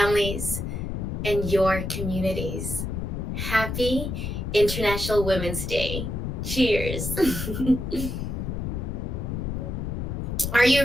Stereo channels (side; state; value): left; noise; rumble, 3 dB below the sound